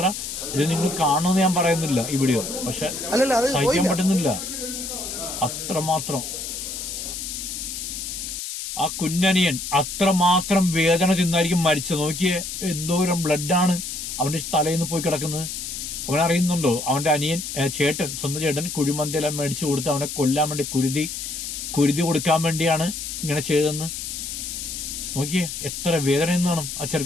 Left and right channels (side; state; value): left; noise; hiss, 6 dB below the sound